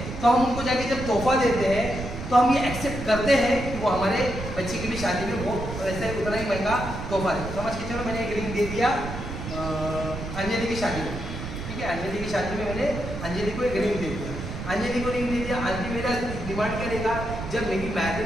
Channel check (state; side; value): noise; right; rumble, 7 dB below the sound